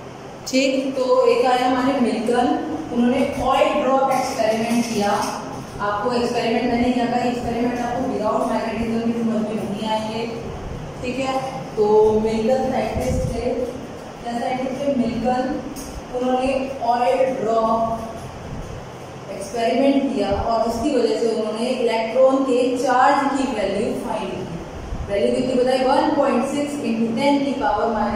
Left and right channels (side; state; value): both; identical; correlation 1.00